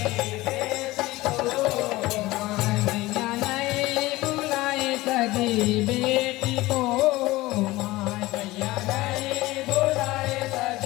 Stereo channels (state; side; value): quieter; right; 19.0 dB